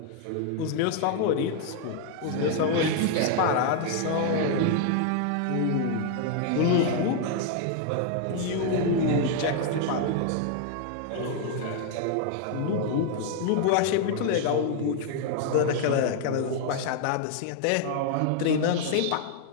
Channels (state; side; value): different; both; correlation 0.00